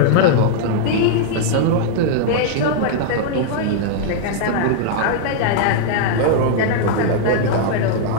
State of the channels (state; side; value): different; both; correlation -0.01